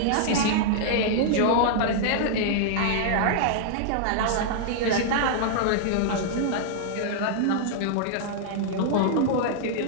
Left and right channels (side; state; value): both; different; correlation -0.01